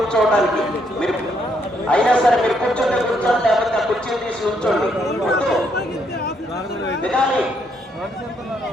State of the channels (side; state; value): both; normal; correlation 0.73